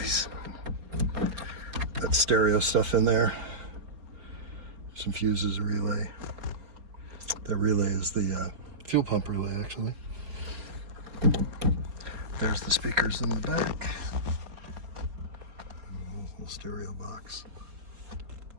That stereo stuff in there. Some fuses, a relay. That relay is the fuel pump relay, actually. There's the speakers in the back. Little stereo box.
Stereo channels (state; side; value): late; left; 4.3 ms